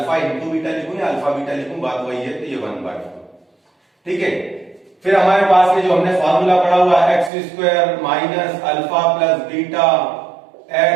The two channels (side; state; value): left; drops out; at 7.3 s